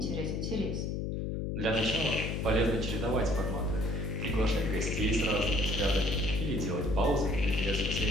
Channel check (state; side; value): noise; left; hum, 1 dB below the sound